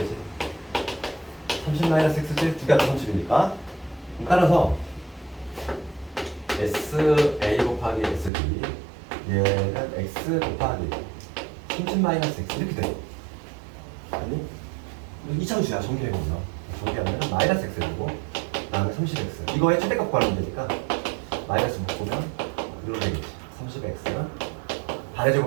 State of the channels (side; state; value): left; drops out; at 8.3 s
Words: 30-X지? 두 개가 30이니까. 따라서 SA 곱하기 SB 얘는 X 곱하기 30-X 이렇게 돼. 아니? 이차함수야. 전개해보면 전개하면 마이너스 X 되고 다음에 30X 이거의 최대값 구하면 되니까 마이너스 묶으면 이렇게 되겠지. 30X는 반의